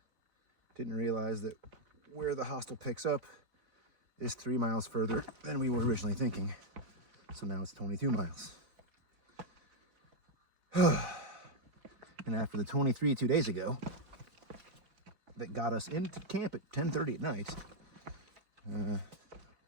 didn't realize that where the hostel picks up is 3 miles further than we were originally thinking. So now it's 22 miles. And after the 23 2 days ago that got us into camp at 10:30 at night,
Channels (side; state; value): left; late; 4.1 ms